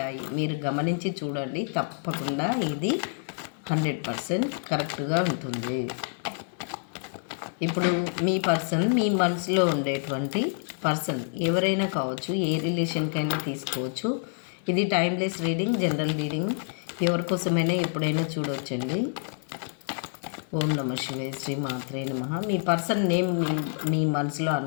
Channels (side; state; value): right; silent; 57 dB below the other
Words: మీరు గమనించి చూడండి, తప్పకుండా ఇది 100% కరెక్ట్గా ఉంటుంది. ఇప్పుడు మీ పర్సన్, మీ మనసులో ఉండేటువంటి పర్సన్ ఎవరైనా కావచ్చు, ఏ రిలేషన్కైనా తీసుకోవచ్చు. ఇది టైమ్లెస్ రీడింగ్, జనరల్ రీడింగ్, ఎవరికోసమైనా ఎప్పుడైనా చూడవచ్చండి. ఓం నమ శివాయ, శ్రీ మాత్రే నమః. మీ పర్సన్ నేమ్ మీ మనసులో